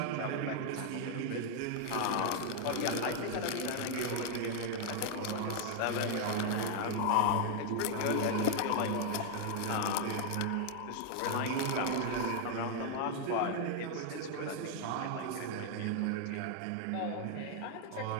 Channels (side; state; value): both; different; correlation 0.00